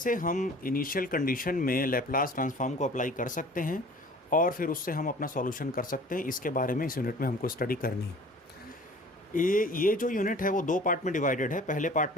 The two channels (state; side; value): normal; both; correlation 0.47